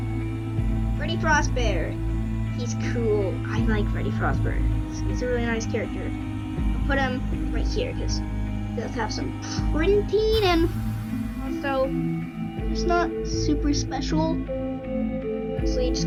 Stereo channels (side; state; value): both; identical; correlation 1.00